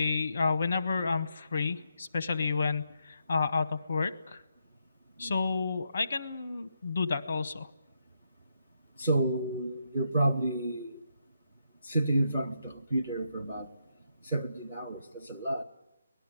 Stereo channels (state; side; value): inverted; both; correlation -0.81